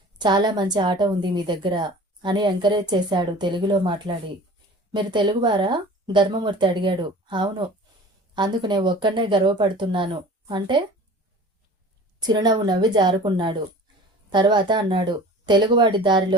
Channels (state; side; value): normal; both; correlation 0.42